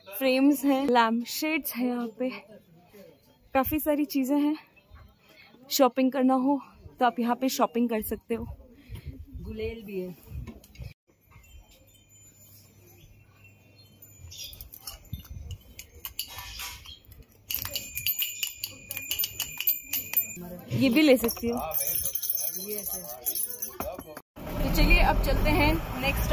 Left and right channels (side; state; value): both; identical; correlation 1.00